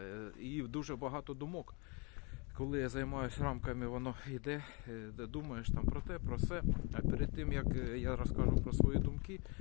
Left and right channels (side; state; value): right; quieter; 31.5 dB